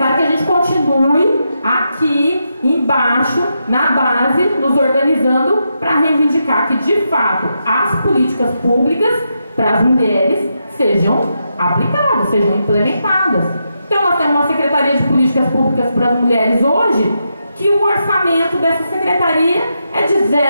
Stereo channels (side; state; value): both; inverted; correlation -0.84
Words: que a gente continue aqui embaixo, na base, nos organizando para reivindicar que, de fato, as políticas públicas para as mulheres sejam aplicadas, sejam implementadas. Então, nós temos uma Secretaria de Políticas Públicas para as Mulheres hoje, que o orçamento dessa secretaria é de